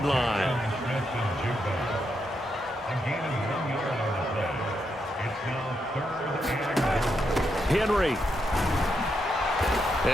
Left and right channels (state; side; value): normal; both; correlation 0.81